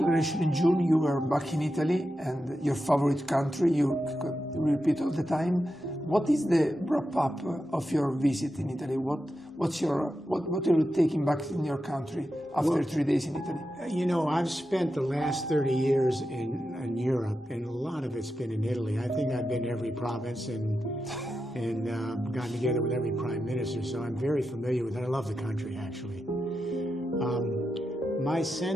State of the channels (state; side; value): normal; both; correlation 0.89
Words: in June, you were back in Italy, and your favorite country, you repeat all the time. What is the wrap-up of your visit in Italy? What are you taking back in your country after 3 days in Italy? You know, I've spent the last 30 years in Europe, and a lot of it's been in Italy. I think I've been to every province and gotten together with every prime minister, so I'm very familiar with it. I love the country, actually. My